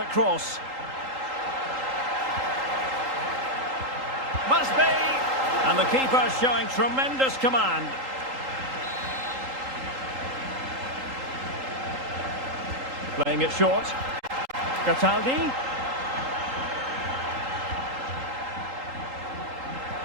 cross. Must be! And the keeper showing tremendous command. Playing it short. Cataldi.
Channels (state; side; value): late; left; 3.8 ms